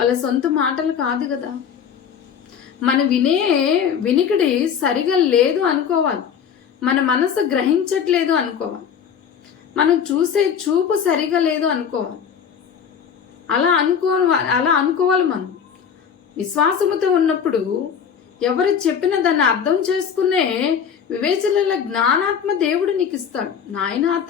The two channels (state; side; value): quieter; right; 7.6 dB